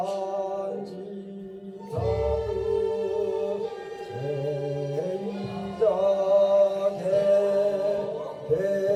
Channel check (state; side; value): identical; both; correlation 1.00